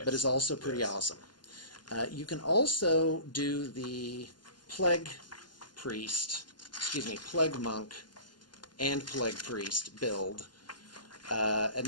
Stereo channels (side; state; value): right; late; 0.71 ms